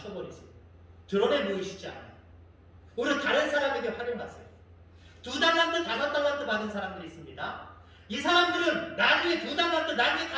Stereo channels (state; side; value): identical; both; correlation 1.00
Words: 드러내 보이시지 않아요. 오히려 다른 사람에게 활용하세요. 2달란트, 5달란트 받은 사람들이 있습니다. 이 사람들은 나중에 2달란트, 나중에